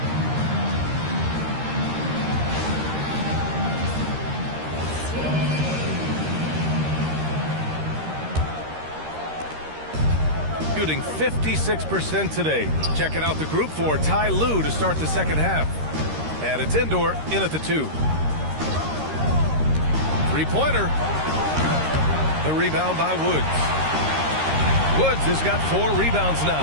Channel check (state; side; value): late; left; 13 ms